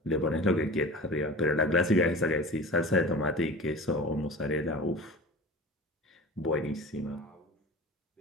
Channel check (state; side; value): normal; both; correlation 0.36